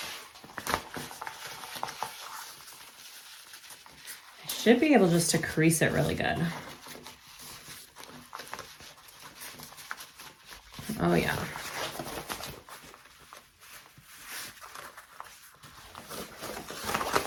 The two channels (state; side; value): identical; both; correlation 1.00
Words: Should be able just to crease it really good. Oh yeah.